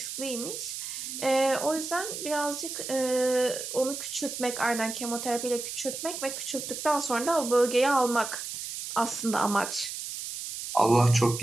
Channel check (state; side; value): noise; right; hiss, 7 dB below the sound